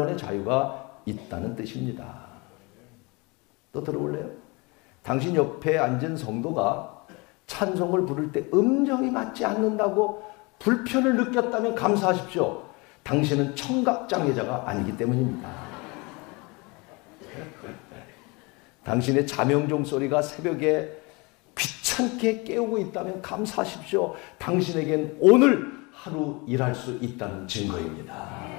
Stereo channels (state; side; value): quieter; right; 27.2 dB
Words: 자유가 있다는 뜻입니다. 또 들어볼래요? 당신 옆에 앉은 성도가 찬송을 부를 때 음정이 맞지 않는다고 불편을 느꼈다면 감사하십시오. 당신은 청각장애자가 아니기 때문입니다. 당신의 자명종 소리가 새벽에 귀찮게 깨우고 있다면 감사하십시오. 당신에겐 오늘 하루 일할 수 있다는